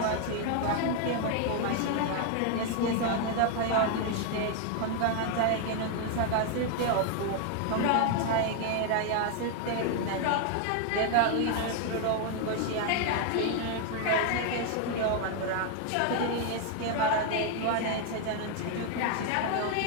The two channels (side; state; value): both; different; correlation 0.00